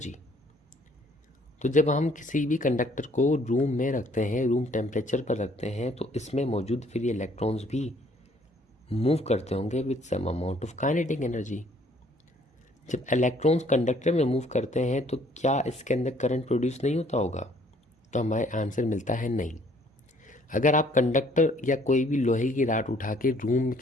तो जब हम किसी भी कंडक्टर को रूम में रखते हैं, रूम टेम्परेचर पर रखते हैं, तो इसमें मौजूद फ्री इलेक्ट्रॉन्स भी मूव करते होंगे with some amount of kinetic energy. जब इलेक्ट्रॉन्स कंडक्टर में मूव करते हैं तो क्या इसके अंदर करंट प्रोड्यूस नहीं होता होगा? तो हमारे आंसर मिलता है नहीं। अगर आप कंडक्टर या कोई भी लोहे की राड उठा के रूम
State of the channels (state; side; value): normal; both; correlation 0.61